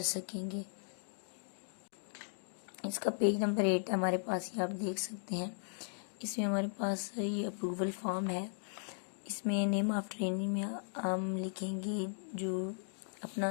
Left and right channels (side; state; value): right; silent; digital silence